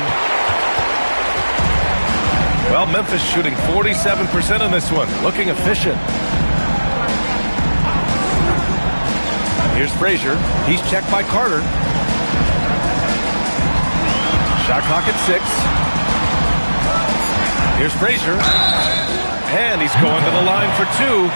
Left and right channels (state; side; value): inverted; both; correlation -1.00